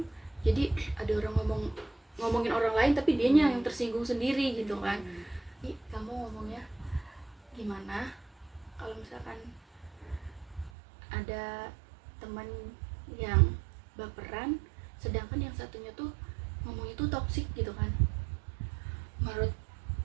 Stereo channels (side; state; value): left; drops out; at 10.7 s